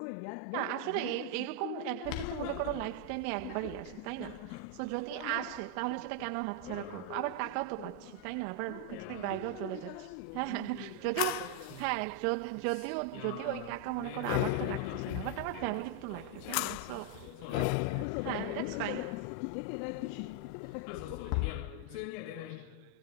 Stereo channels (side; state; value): both; different; correlation 0.00